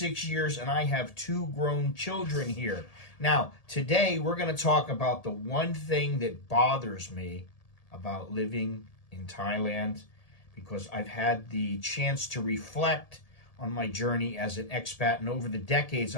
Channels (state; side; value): late; right; 1.8 ms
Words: years, and I have two grown children here. Now, today we're going to talk about the one thing that bothers me about living in Thailand because I've had the chance to reflect on my journey as an expat, and over the decades,